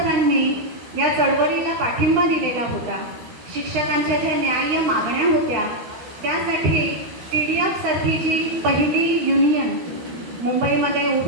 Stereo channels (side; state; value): left; late; 13 ms